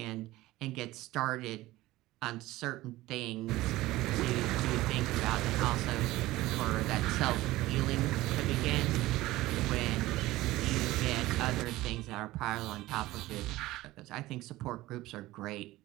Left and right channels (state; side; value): quieter; left; 17.7 dB